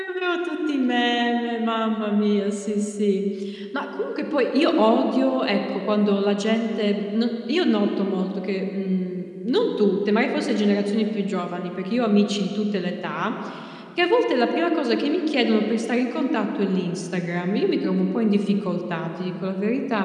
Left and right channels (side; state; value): both; identical; correlation 1.00